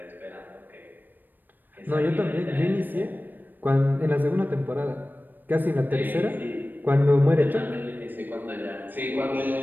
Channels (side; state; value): left; late; 0.091 ms